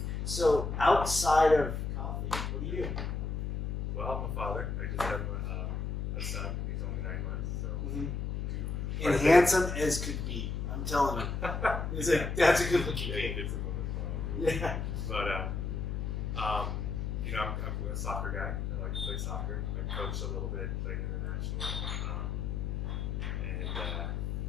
So outside of coffee, what do you do? Well, I'm a father. I just have a son. He's only 9 months, so and handsome as could be. I'm telling you, that's a good looking kid. It's a woman. Yeah. But I'm a soccer guy. I like to play soccer. I coach a little bit, played international.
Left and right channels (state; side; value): noise; left; hum, 2 dB below the sound